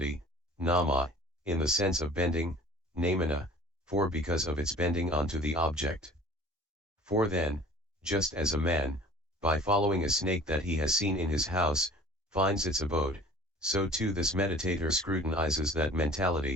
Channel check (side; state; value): both; normal; correlation 0.47